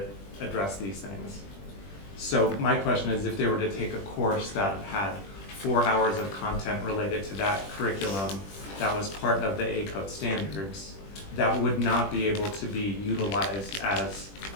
addressed these things. So my question is, if they were to take a course that had 4 hours of content related to that curriculum that was part of the ACODE standards, that would not be able to be utilized as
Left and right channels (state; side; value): late; right; 20 ms